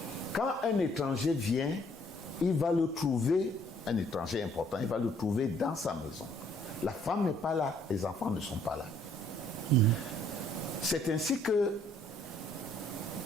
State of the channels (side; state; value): both; normal; correlation 0.64